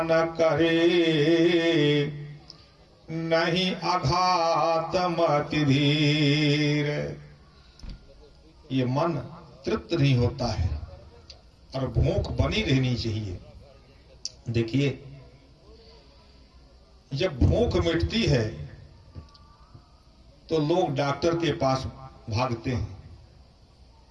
करे, नहीं अघात मति धीर। ये मन तृप्त नहीं होता है और भूख बनी रहनी चाहिए। देखिए जब भूख मिटती है तो लोग डॉक्टर के पास भागते हैं।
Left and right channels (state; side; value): identical; both; correlation 1.00